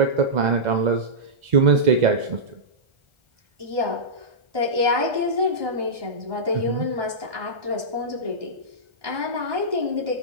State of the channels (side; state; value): left; late; 1.3 ms